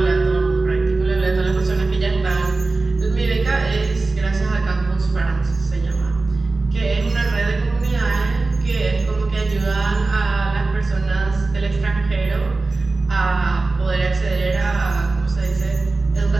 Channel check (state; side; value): quieter; left; 3.5 dB